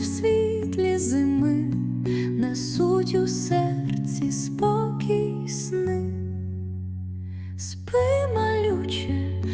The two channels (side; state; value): both; identical; correlation 1.00